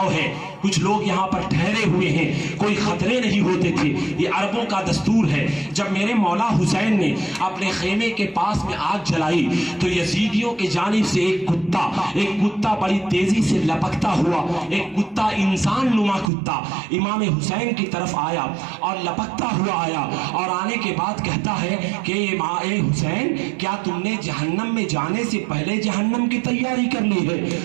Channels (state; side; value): drops out; left; at 16.3 s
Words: ہے, کچھ لوگ یہاں پر ٹھہرے ہوئے ہیں, کوئی خطرے نہیں ہوتے تھے. یہ عربوں کا دستور ہے. جب میرے مولا حسین نے اپنے خیمے کے پاس میں آگ جلائی تو یزیدیوں کی جانب سے ایک کتا بڑی تیزی سے لپکتا ہوا, ایک کتا انسان نما کتا امام حسین کی طرف آیا اور لپکتا ہوا آیا اور آنے کے بعد کہتا ہے کہ اے حسین کیا تم نے جہنم میں جانے سے پہلے جہنم کی تیاری کر لی ہے؟